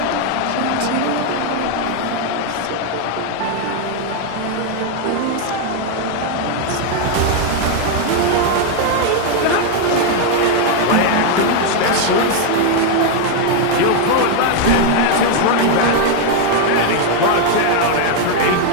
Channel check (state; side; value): different; both; correlation 0.01